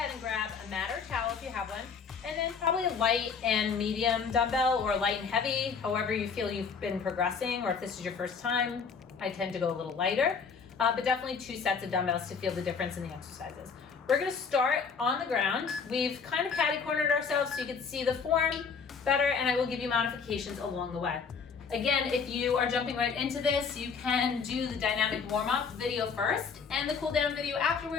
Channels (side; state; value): right; quieter; 5.8 dB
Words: and grab a mat or towel if you have one. And then probably a light and medium dumbbell or light and heavy, however you feel you've been progressing, or if this is your first time, I tend to go a little lighter. But definitely 2 sets of dumbbells to feel the difference in the exercises. We're going to start on the ground. We've kind of catty-cornered ourselves so you can see the form better, and I will give you modifications along the way. Again, if you are jumping right into this, you can do the dynamic warm-up video first and the cool-down video